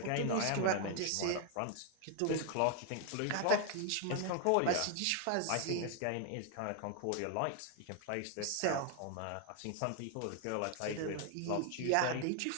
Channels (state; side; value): different; both; correlation 0.00